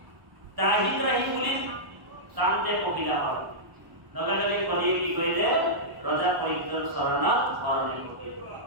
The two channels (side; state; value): left; late; 1.0 ms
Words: ত্ৰাহি ত্ৰাহি বুলি টানতে পখিলা হ'ল। লগে লগে কলিয়ে কি কৰিলে? ৰজা পৰীক্ষিতৰ চৰণত শৰণে পকিলে।